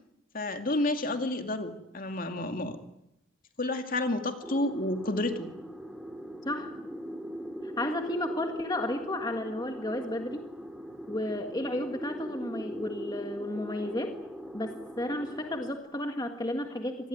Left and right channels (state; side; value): normal; both; correlation 0.54